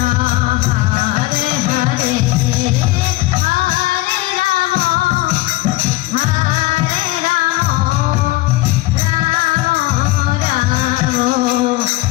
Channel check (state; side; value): quieter; right; 19.0 dB